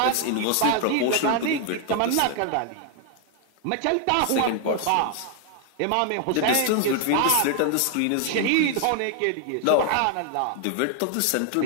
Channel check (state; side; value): different; both; correlation 0.00